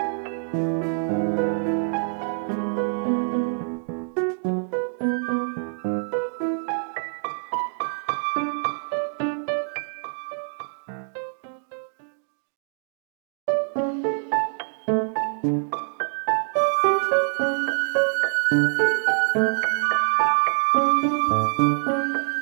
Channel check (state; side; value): silent; left; digital silence